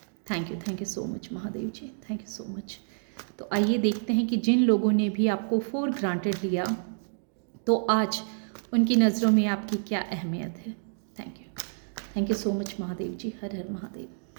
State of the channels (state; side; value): silent; left; digital silence